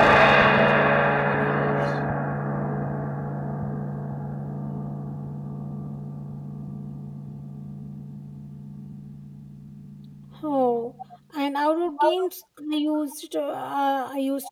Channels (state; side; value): identical; both; correlation 1.00